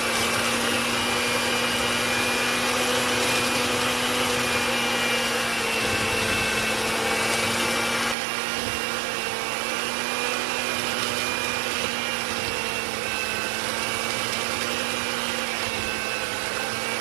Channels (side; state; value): left; drops out; at 8.2 s